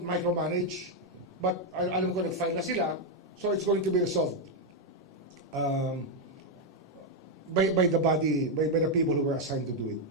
micromanage, but alam ko nag-file na sila, so it's going to be resolved by the body, by the people who were assigned to do it.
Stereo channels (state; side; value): normal; both; correlation 0.01